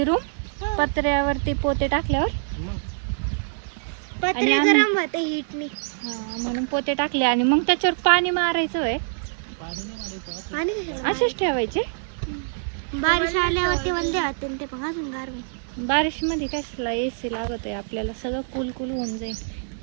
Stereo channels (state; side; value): silent; left; digital silence